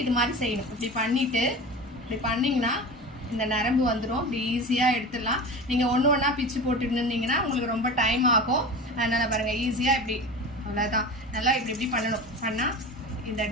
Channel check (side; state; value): both; normal; correlation 0.31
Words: இது மாதிரி செய்யணும். இப்படி பண்ணிவிட்டு இப்படி பண்ணிங்கன்னா இந்த நரம்பு வந்துடும். இப்படி ஈஸியாக எடுத்துடலாம். நீங்கள் ஒன்று ஒன்றா பிச்சு போட்டுட்டு இருந்தீங்கன்னா உங்களுக்கு ரொம்ப டைம் ஆகும். அதனால் பாருங்கள், ஈஸியாக இப்படி அவ்வளோதான். நல்லா இப்படி இப்படி பண்ணணும். பண்ணால் இந்த